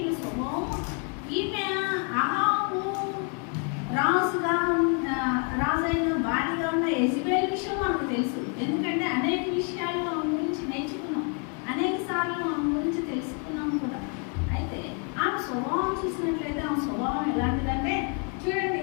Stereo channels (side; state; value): right; quieter; 37.7 dB